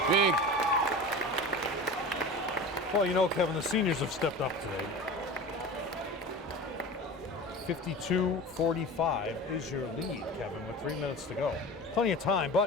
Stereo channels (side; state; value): both; normal; correlation 0.33